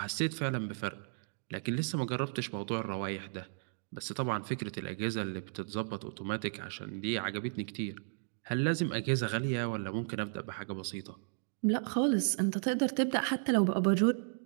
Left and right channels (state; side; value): silent; left; digital silence